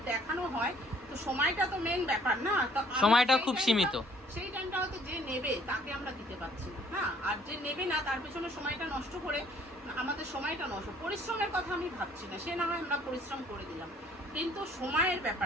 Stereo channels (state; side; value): normal; both; correlation 0.60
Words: দেখানো হয় তো সময়টা তো মেন ব্যাপার না, তো সময়টা খুব সীমিত। সেই টাইমটা হয়তো যে নেবে তাকে আমরা দিতে পারছি না, হ্যাঁ, আর যে নেবে না তার পেছনে সময়টা নষ্ট করে আমাদের সময়টা নষ্ট। পরিশ্রমের কথা আমি ভাবছি না, সে না হয় আমরা পরিশ্রম করে দিলাম, কিন্তু সময়ের